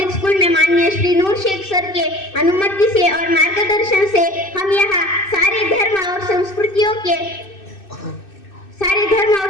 स्कूल में माननीय श्री नूर शेख सर के अनुमति से और मार्गदर्शन से हम यहाँ सारे धर्म और संस्कृतियों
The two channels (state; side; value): late; right; 2.6 ms